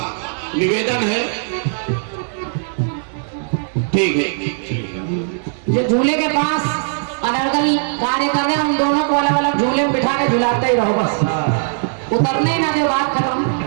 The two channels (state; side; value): silent; left; 66 dB below the other